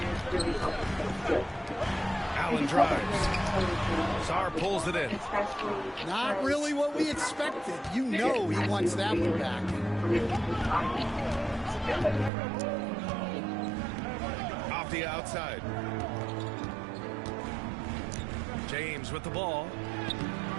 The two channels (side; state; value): left; drops out; at 12.3 s